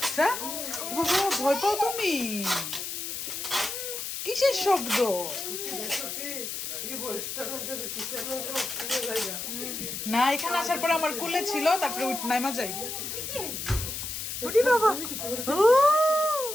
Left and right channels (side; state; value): left; noise; hiss, 5 dB below the sound